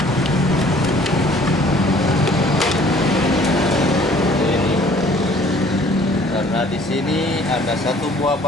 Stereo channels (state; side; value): normal; both; correlation 0.55